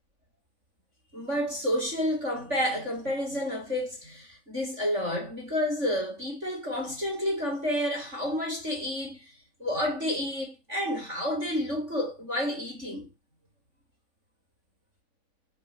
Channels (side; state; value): left; late; 3.5 ms